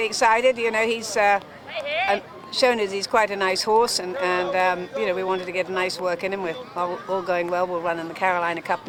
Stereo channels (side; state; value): both; identical; correlation 1.00